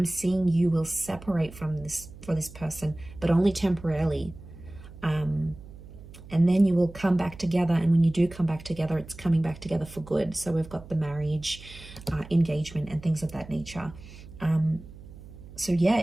seeing you will separate from this person, but only temporarily. And then you will come back together, and when you do come back together, it's coming back together for good. So we've got the marriage, engagement, and things of that nature. So yeah,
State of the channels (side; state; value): right; noise; hum, 17 dB below the sound